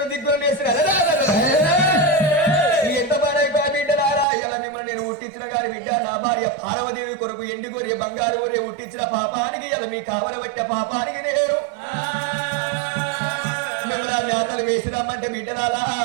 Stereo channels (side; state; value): left; drops out; at 4.2 s